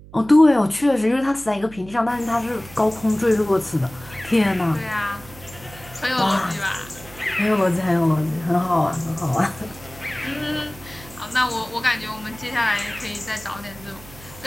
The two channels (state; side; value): noise; right; hum, 19 dB below the sound